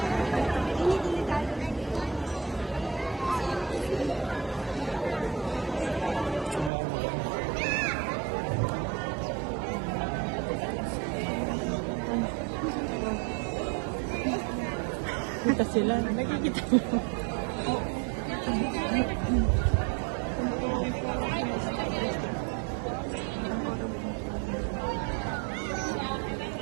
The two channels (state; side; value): drops out; left; at 6.7 s